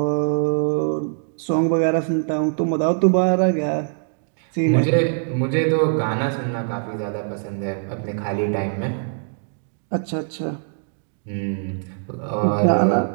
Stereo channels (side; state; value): left; silent; digital silence